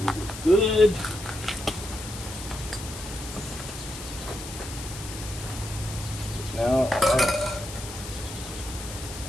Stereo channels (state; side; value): noise; left; hiss, 11 dB below the sound